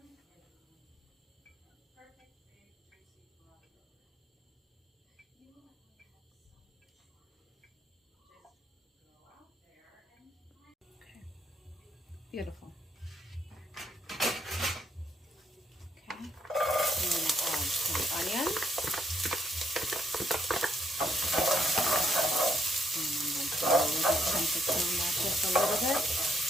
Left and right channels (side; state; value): both; normal; correlation 0.73